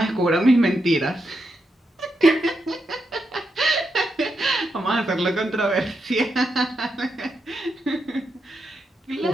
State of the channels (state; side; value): normal; both; correlation 0.84